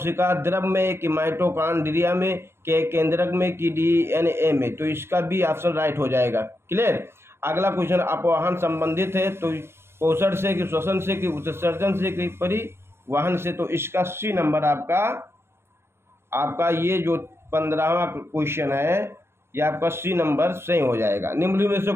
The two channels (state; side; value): late; left; 0.12 ms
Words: द्रव में कि माइटोकॉन्ड्रिया में के केंद्रक में कि DNA में, तो इसका भी ऑप्शन राइट हो जाएगा। क्लियर। अगला क्वेश्चन अपवाहन संबंधित है, तो पोषण से कि श्वसन से कि उत्सर्जन से कि परिवहन से, तो इसका सी नंबर आपका ये जो 15वां क्वेश्चन है ये आपका सी नंबर सही हो जाएगा। निम्नलिखित में से